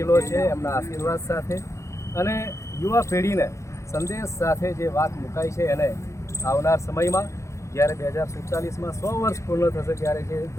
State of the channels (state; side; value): late; right; 0.14 ms